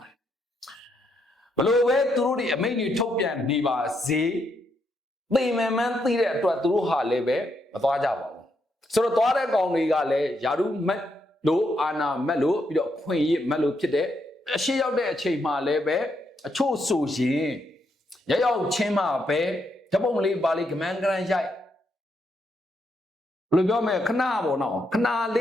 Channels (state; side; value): normal; both; correlation 0.78